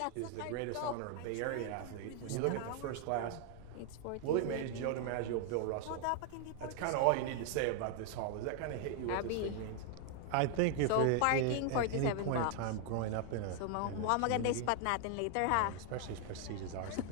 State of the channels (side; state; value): both; different; correlation 0.00